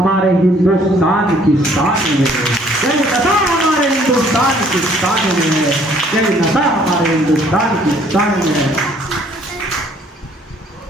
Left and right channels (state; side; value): normal; both; correlation 0.60